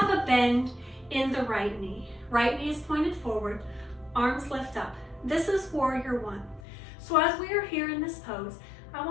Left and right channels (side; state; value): right; drops out; at 6.6 s